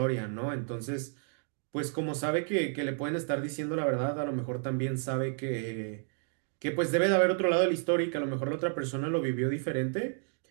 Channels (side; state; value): left; silent; 57 dB below the other